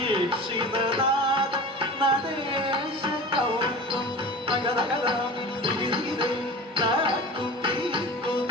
ಸಹಸ್ರದೀಕ್ಷಿತನಾಥ ನಡೆಶ ಕೌತ್ವಂ ನಗದಗದಂ ದಿಗಿದಿಗಿದೈ ನಾಕು ಪೀಕು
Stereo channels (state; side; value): normal; both; correlation 0.36